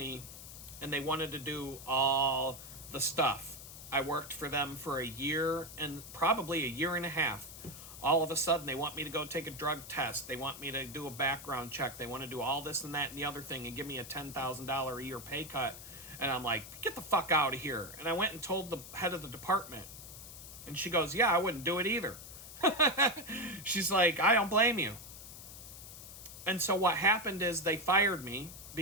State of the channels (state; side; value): noise; left; hiss, 13 dB below the sound